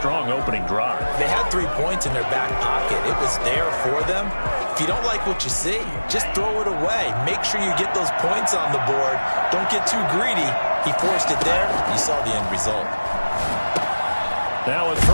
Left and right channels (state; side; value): inverted; both; correlation -1.00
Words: opening drive. They had 3 points in their back pocket. It was there for them. If you don't like what you see, just throw it away. Make sure you get those points on the board. Don't get too greedy. He forced it there. You saw the end result. Now a